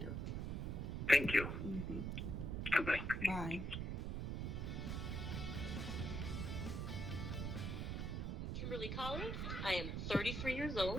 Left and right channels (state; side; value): noise; right; rumble, 2 dB below the sound